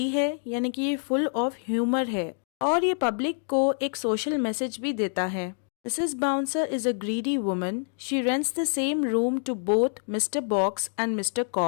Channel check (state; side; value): silent; right; digital silence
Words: है, यानी कि ये फुल ऑफ ह्यूमर है और ये पब्लिक को एक सोशल मैसेज भी देता है। Mrs. Bouncer is a greedy woman. She rents the same room to both Mr. Box and Mr.